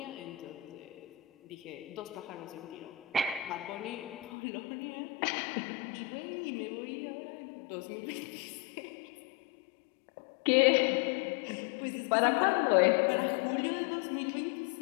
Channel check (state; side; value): drops out; right; at 4.3 s